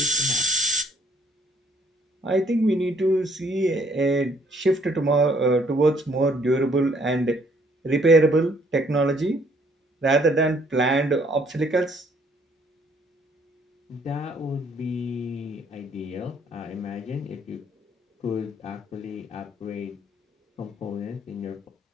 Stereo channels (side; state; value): both; normal; correlation 0.65